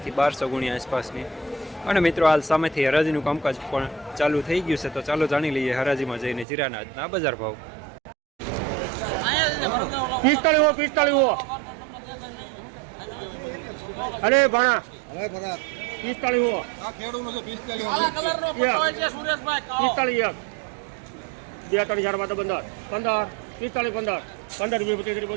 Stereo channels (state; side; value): drops out; left; at 6.5 s